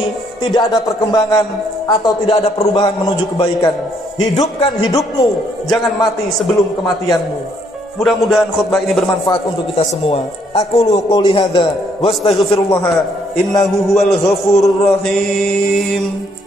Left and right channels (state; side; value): normal; both; correlation 0.69